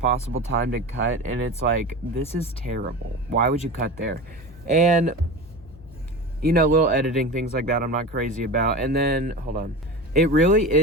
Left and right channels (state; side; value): normal; both; correlation 0.29